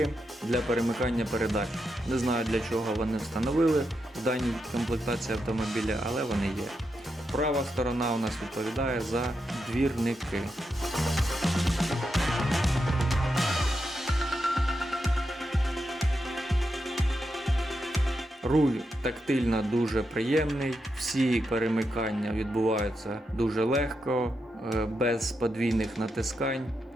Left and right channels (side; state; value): both; normal; correlation 0.85